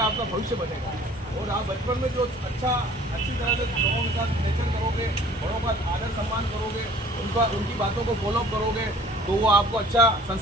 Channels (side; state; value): both; normal; correlation 0.51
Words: भविष्य बनेगा। और आप बचपन में जो अच्छी तरह से लोगों के साथ रिलेशन करोगे, बड़ों का आदर सम्मान करोगे, उनकी बातों को फॉलोअप करोगे तो वो आपको अच्छा